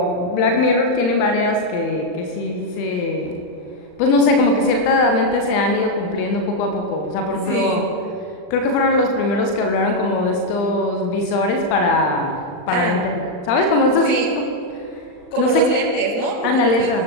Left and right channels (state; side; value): late; right; 39 ms